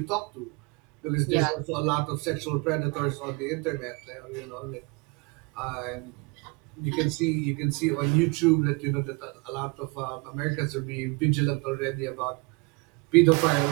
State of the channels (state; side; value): quieter; left; 29.2 dB